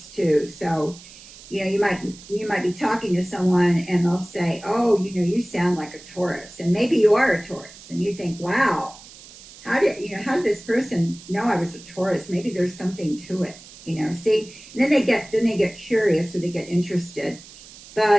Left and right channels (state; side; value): noise; right; hiss, 19 dB below the sound